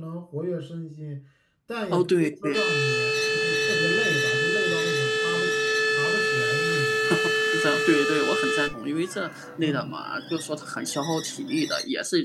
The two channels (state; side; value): identical; both; correlation 1.00